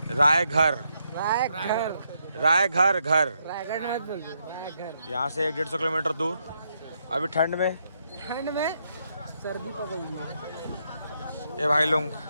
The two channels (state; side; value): inverted; both; correlation -0.78